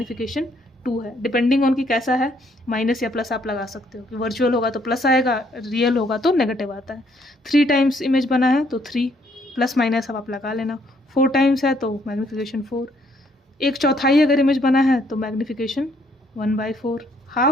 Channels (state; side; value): normal; both; correlation 0.68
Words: 2 है, डिपेंडिंग ऑन कि कैसा है, माइनस या प्लस आप लगा सकते हो, कि वर्चुअल होगा तो प्लस आएगा, रियल होगा तो नेगेटिव आता है। 3 टाइम्स इमेज बना है तो 3 प्लस माइनस अब आप लगा लेना, 4 टाइम्स है तो मैग्नीफिकेशन 4, एक चौथाई अगर इमेज बना है तो मैग्नीफिकेशन 1/4,